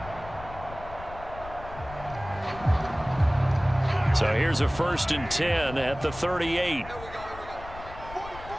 So here's a 1st and 10 at the 38.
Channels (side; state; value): left; noise; rumble, 15 dB below the sound